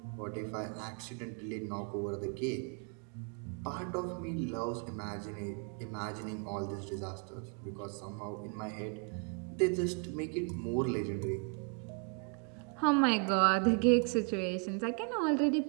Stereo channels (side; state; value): left; quieter; 37.3 dB